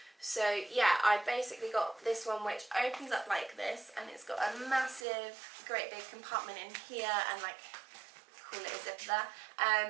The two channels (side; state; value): left; drops out; at 5.1 s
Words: So yeah, I basically got this one which opens up like this, and it's got a massive, great big compartment in here, and like, call it a zipper there.